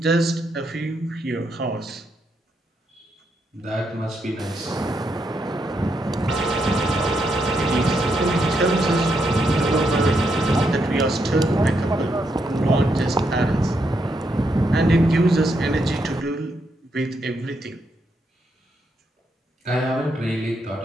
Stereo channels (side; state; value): both; normal; correlation 0.80